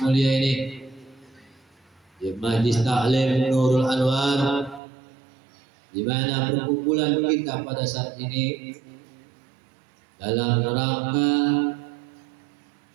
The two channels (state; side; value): drops out; left; at 4.8 s